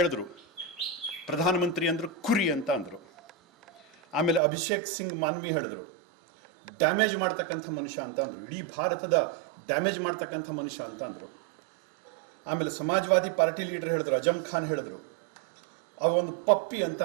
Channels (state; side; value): drops out; left; at 4.4 s